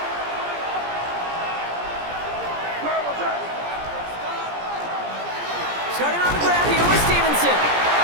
Starting on the ground here with Stevenson.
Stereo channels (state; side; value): late; left; 17 ms